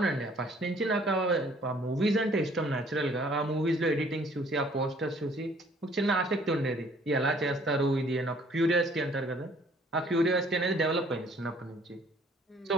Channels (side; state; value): both; normal; correlation 0.59